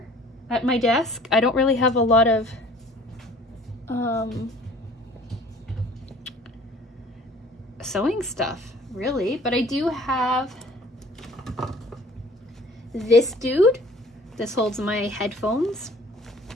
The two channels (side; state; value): both; normal; correlation 0.51